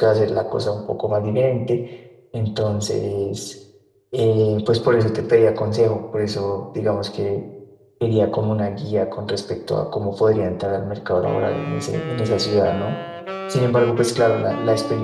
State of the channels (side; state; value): both; identical; correlation 1.00